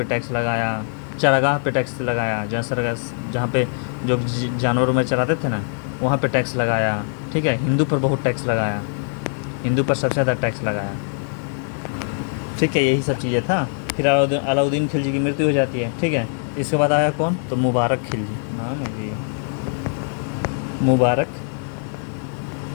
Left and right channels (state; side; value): silent; right; 64 dB below the other